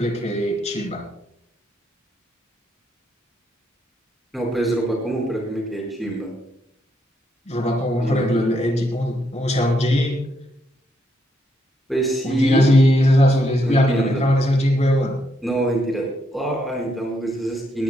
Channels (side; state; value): both; normal; correlation 0.76